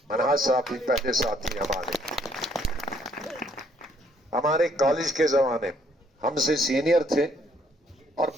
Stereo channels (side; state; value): both; normal; correlation 0.67